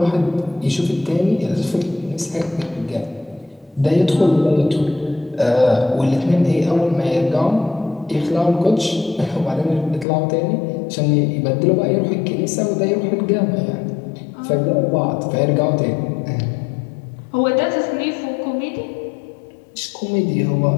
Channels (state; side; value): drops out; right; at 10.1 s